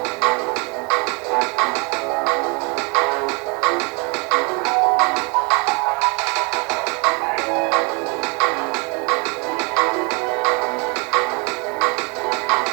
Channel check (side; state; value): left; quieter; 31.6 dB